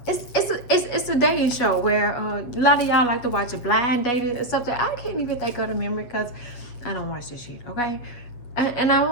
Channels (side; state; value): right; late; 8.2 ms